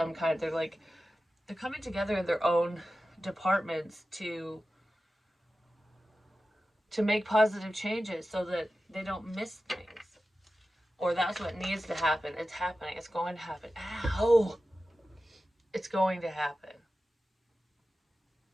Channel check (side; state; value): both; normal; correlation 0.94